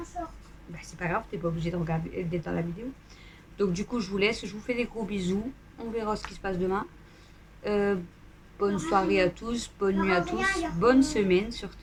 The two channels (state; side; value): identical; both; correlation 1.00